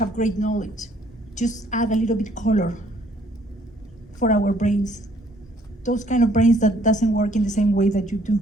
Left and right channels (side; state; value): both; normal; correlation 0.63